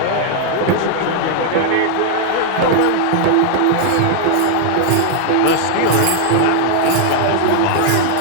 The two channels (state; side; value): different; both; correlation 0.00